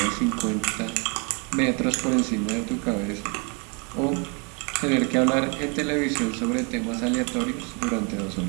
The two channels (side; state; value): left; quieter; 34.2 dB